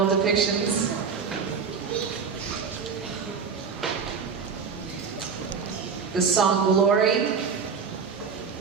depictions. The song Glory.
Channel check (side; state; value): left; quieter; 5.9 dB